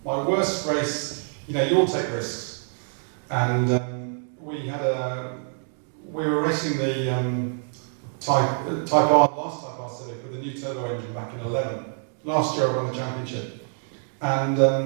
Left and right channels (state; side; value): silent; left; 61 dB below the other